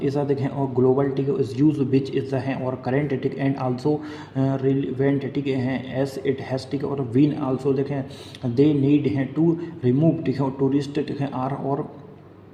इज देखें, और ग्लोबल, ठीक है, is use which is the है, और करेंट, ठीक, एंड आल्सो रिलेवेंट, ठीक है, एज इट हैज़, ठीक है, और वीन आल्सो, देखें, दे नीड है टू रिमूव, ठीक है, टूरिस्ट, ठीक है, आर, और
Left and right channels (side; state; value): both; identical; correlation 1.00